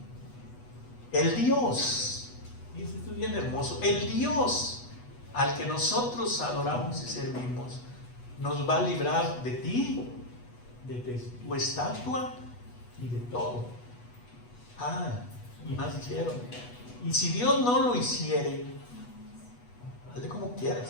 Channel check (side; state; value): right; late; 8.2 ms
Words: El Dios, y esto es bien hermoso, el Dios al que nosotros adoramos y servimos, nos va a librar de ti, de tu estatua y de todo. Y más dijeron: y si Dios no lo hiciere, hazle como